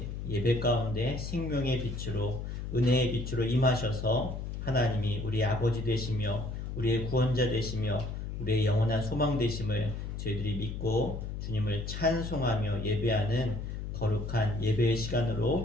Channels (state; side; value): noise; left; hum, 6 dB below the sound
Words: 예배 가운데 생명의 빛으로 은혜의 빛으로 임하셔서 하나님이 우리의 아버지 되시며 우리의 구원자 되시며 우리의 영원한 소망 되심을 저희들이 믿고 주님을 찬송하며 예배하는 거룩한 예배의